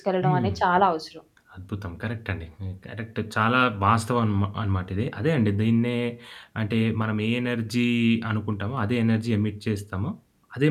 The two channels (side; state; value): both; identical; correlation 1.00